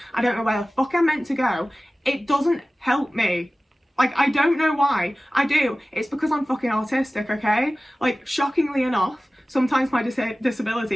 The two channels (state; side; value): normal; both; correlation 0.97